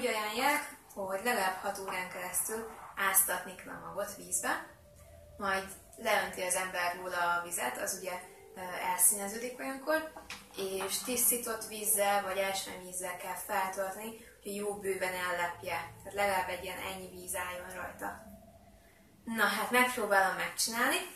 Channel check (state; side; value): identical; both; correlation 1.00